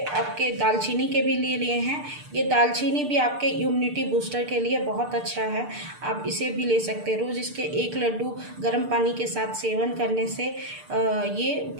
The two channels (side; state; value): left; late; 6.7 ms